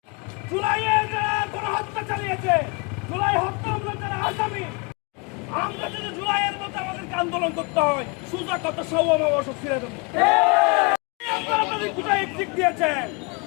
জুলাইয়ে যারা গণহত্যা চালিয়েছে, জুলাই হত্যা আমরা যারা আসামি, আমরা যদি জুলাইয়ের মতো আমাদেরকে আন্দোলন করতে হয়, সুজা কত সব অবসর ফিরে দেবো। আপনারা তাদের কোথায় এক্সিট দিয়েছেন?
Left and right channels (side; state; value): right; quieter; 30.6 dB